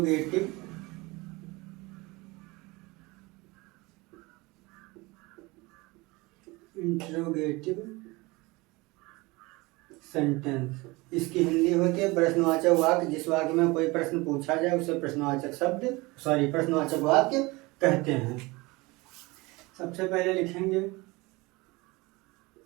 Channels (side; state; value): left; quieter; 23.4 dB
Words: सेंटेंस, इसकी हिंदी होती है प्रश्नवाचक वाक्य। जिस वाक्य में कोई प्रश्न पूछा जाए उसे प्रश्नवाचक वाक्य कहते हैं। सबसे पहले लिखेंगे